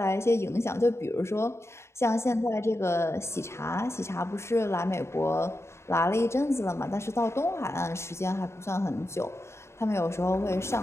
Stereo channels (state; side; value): late; right; 0.13 ms